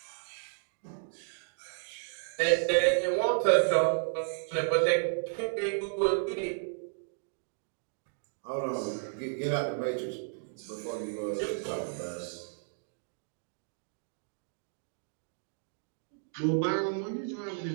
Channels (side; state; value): left; silent; digital silence